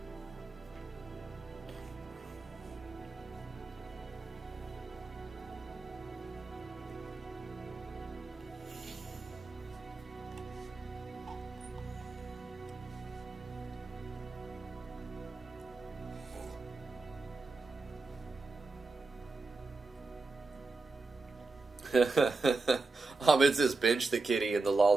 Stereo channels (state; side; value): quieter; left; 3.7 dB